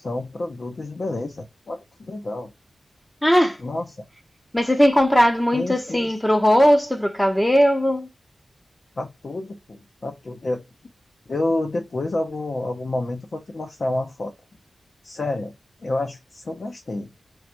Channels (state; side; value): normal; both; correlation 0.97